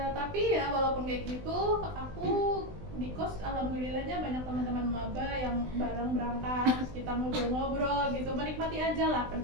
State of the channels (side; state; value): left; late; 20 ms